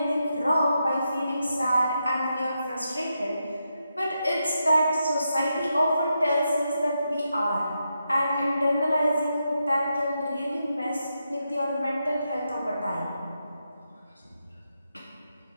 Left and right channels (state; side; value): inverted; both; correlation -0.85